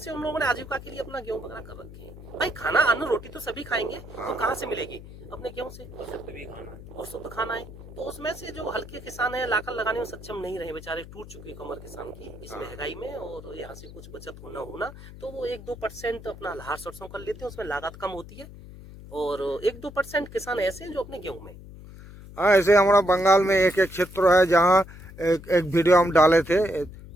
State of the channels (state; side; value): noise; left; hum, 16 dB below the sound